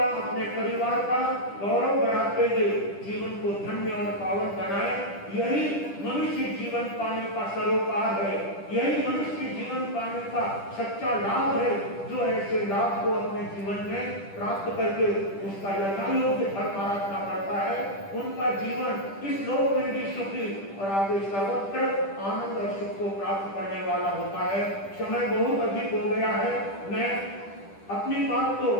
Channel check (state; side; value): late; right; 10 ms